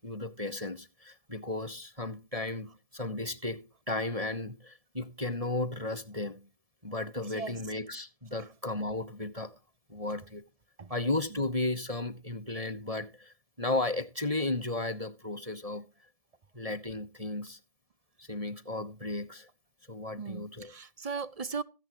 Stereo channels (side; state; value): left; late; 1.7 ms